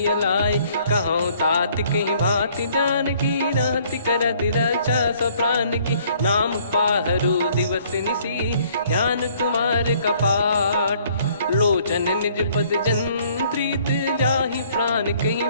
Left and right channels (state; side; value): inverted; both; correlation -0.61